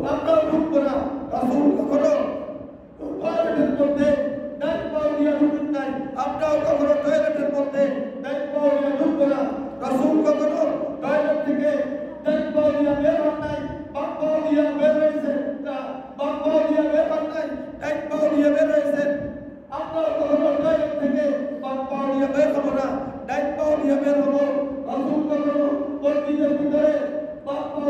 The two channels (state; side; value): identical; both; correlation 1.00